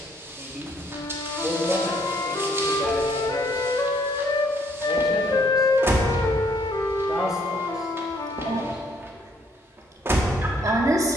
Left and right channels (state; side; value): normal; both; correlation 0.66